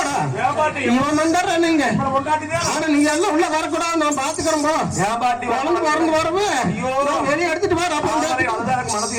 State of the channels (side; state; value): both; identical; correlation 1.00